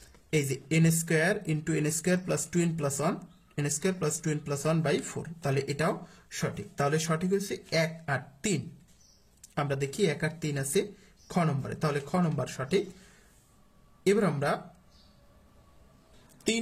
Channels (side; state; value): both; identical; correlation 1.00